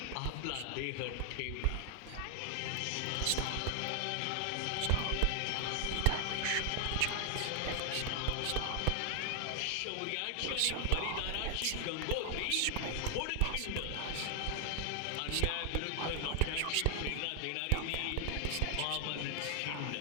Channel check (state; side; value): different; both; correlation 0.00